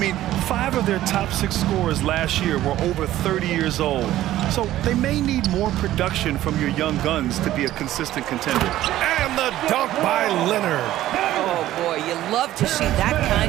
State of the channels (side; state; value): left; quieter; 14.1 dB